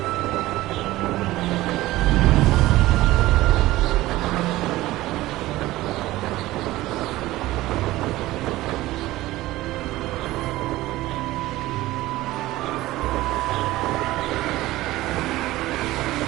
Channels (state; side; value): quieter; left; 17.2 dB